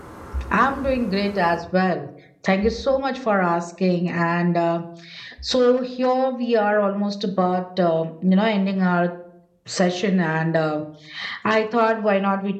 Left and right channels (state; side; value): identical; both; correlation 1.00